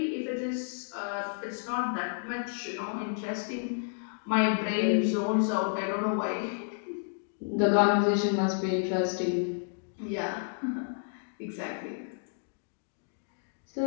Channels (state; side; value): silent; right; digital silence